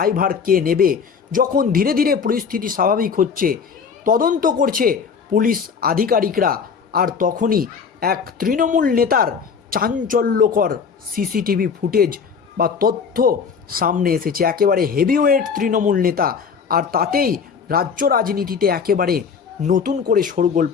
কে নেবে? যখন ধীরে ধীরে পরিস্থিতি স্বাভাবিক হচ্ছে, তদন্ত করছে পুলিশ আধিকারিকরা, আর তখনই এক তৃণমূল নেতার চাঞ্চল্যকর সিসিটিভি ফুটেজ বা তথ্য সামনে এসেছে। একেবারে হেভিওয়েট তৃণমূল নেতা, আর তাতেই রাজ্য রাজনীতিতে একেবারে নতুন করে শোরগোল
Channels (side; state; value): right; quieter; 6.1 dB